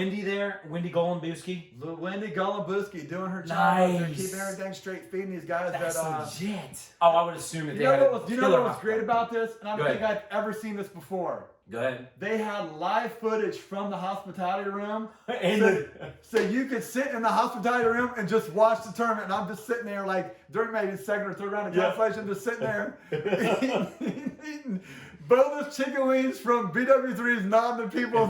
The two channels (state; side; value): identical; both; correlation 1.00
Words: there? Wendy Golembuski? Wendy Golembuski doing her job. Nice. They're keeping everything straight, feeding these guys. That's legit. Oh, I would assume that you they know had what was, you know what was great about this? And I don't think ahead. I've ever seen this before. Go ahead. They had live footage from the hospitality room. And so you could sit in the hospitality room and just watch the tournament. And I'm just sitting there like during maybe the second or third round of cancellation, just sitting there eating boneless chicken wings from BW3's nodding to